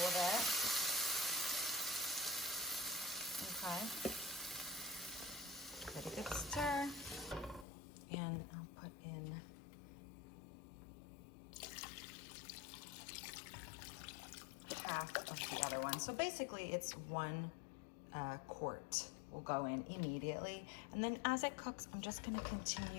of it. Okay. Give it a good stir, and I'll put in half of the other one. So basically it's 1 quart will go in immediately. And then as it cooks, I'm just gonna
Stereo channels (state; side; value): drops out; right; at 7.7 s